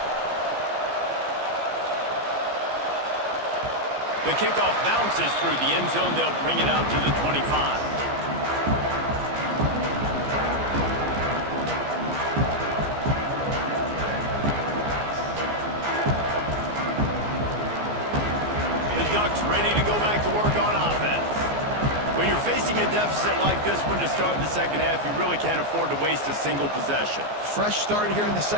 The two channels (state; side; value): late; left; 14 ms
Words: The kickoff bounces through the end zone. They'll bring it out to the 25. The Ducks ready to go back to work on offense. When you're facing a deficit like this one to start the second half, you really can't afford to waste a single possession. Fresh start here in the